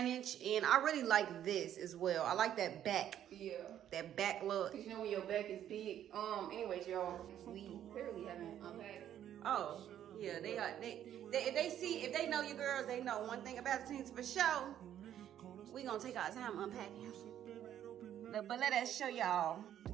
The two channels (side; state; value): left; quieter; 10.7 dB